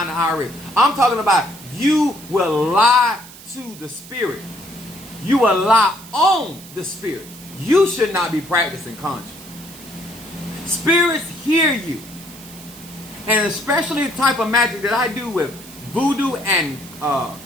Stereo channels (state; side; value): noise; right; hiss, 18 dB below the sound